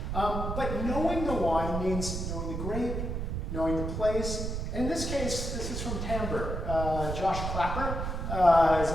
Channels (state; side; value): noise; right; rumble, 3 dB below the sound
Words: But knowing the wine means knowing the grape, knowing the place. And in this case, this is from Timbre. Josh Clapper is